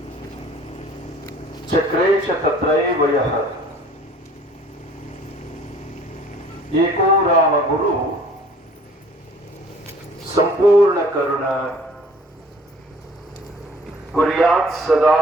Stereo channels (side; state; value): both; normal; correlation 0.52